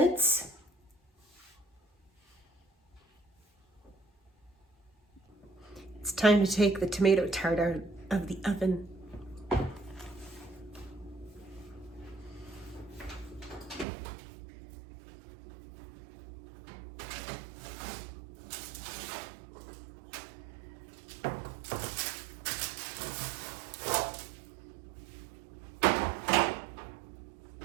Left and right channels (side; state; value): left; drops out; at 13.9 s